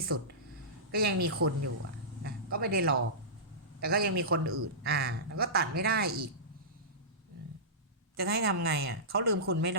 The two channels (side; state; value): both; normal; correlation -0.18